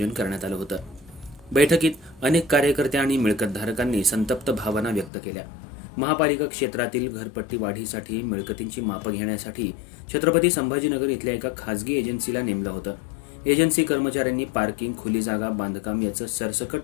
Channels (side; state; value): right; drops out; at 5.1 s